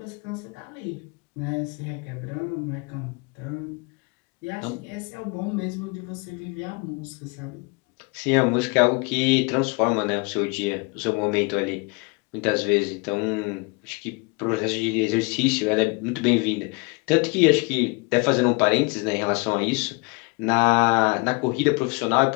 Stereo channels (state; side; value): quieter; right; 29.6 dB